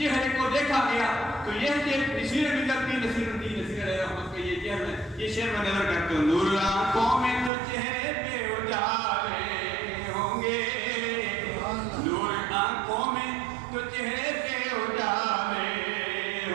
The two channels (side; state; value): left; drops out; at 7.5 s